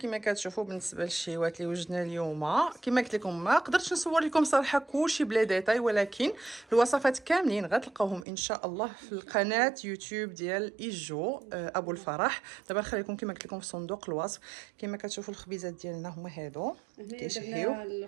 كتشوفوا بالنسبه للشيوات اللي وجدنا اليوم كما قلت لكم ما قدرتش نصور لكم صراحه كلشي بلا ديتاي، ولكن الوصفات كاملين غتلقاوهم ان شاء الله في القناه يوتيوب ديال ايجو ابو الفرح. دابا نخليكم كما قلت لكم في صندوق الوصف. كما كتشوفوا الخبيزات ديالنا هما هادو كيشهيو. درنا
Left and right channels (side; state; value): left; drops out; at 8.2 s